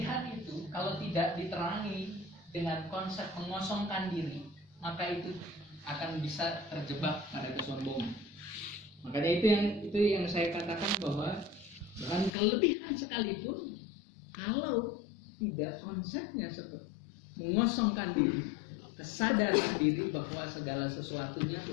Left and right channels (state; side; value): drops out; right; at 12.3 s